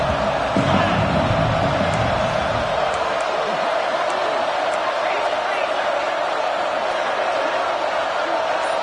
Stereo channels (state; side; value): identical; both; correlation 1.00